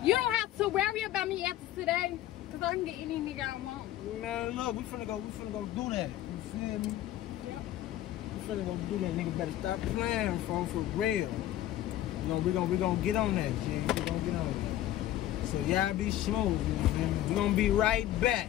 You don't have to worry about me after today, because I can get any nigga I want. Man, look, we finna go do that. You feel me? Yep. We finna go do that. Nigga better stop playing, for real. You know, we gonna get on that, G. We gonna get on that. So y'all be smooth, you know what I mean? We gonna be right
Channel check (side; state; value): right; quieter; 13.4 dB